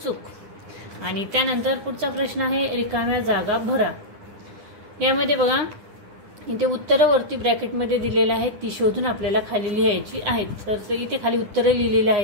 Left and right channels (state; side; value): late; left; 9.9 ms